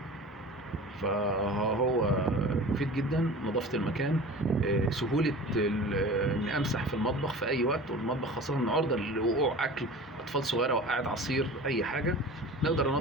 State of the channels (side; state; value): both; normal; correlation 0.38